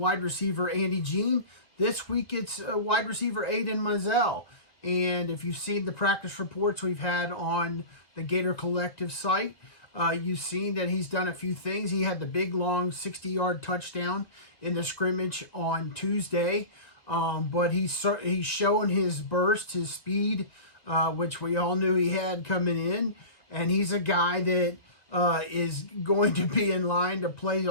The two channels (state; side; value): late; right; 2.2 ms